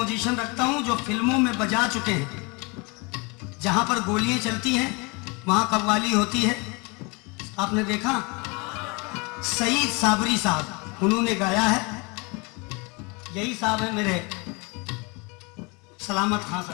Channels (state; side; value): quieter; right; 28.9 dB